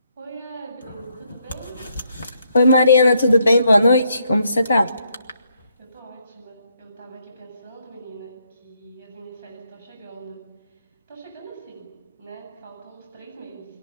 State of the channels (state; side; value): inverted; both; correlation -0.74